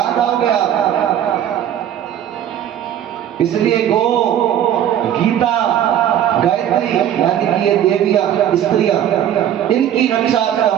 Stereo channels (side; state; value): left; quieter; 10.5 dB